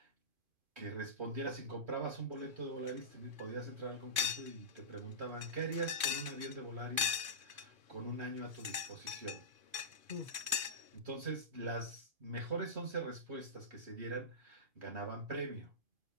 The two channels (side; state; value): left; late; 2.5 ms